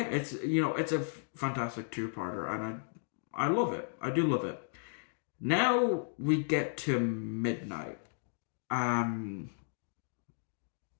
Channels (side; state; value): right; silent; digital silence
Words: it's a fantastic two-parter, and I love it. I do love it. Now we get to Midnight. Um,